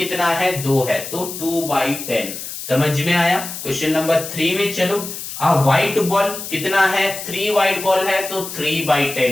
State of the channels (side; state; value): left; noise; hiss, 9 dB below the sound